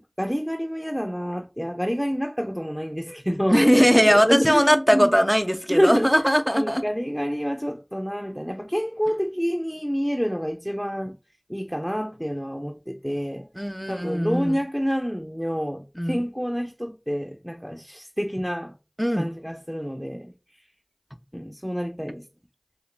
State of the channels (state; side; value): identical; both; correlation 1.00